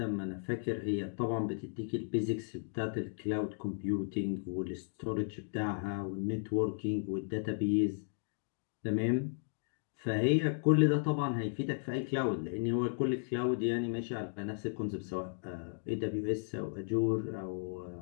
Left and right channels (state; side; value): silent; right; digital silence